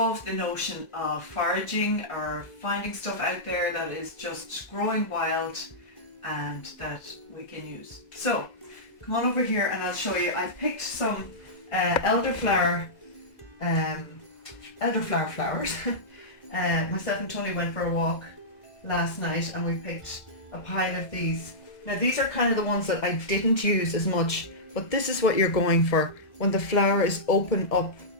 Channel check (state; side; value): late; right; 1.4 ms